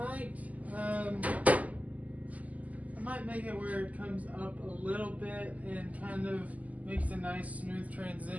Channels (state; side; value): late; left; 0.075 ms